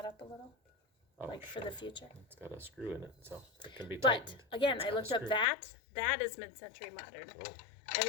up a little? Oh, Like for the future? It's got a screw in it, so it can be But tightened. again, It's I got a looked up screw. that. That is mid-century modern. Oh, I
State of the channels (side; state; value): right; drops out; at 5.5 s